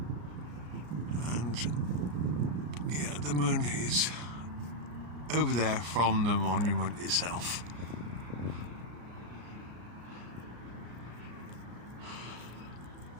and yeah, the moon is over there from the monument itself.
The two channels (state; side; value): late; left; 33 ms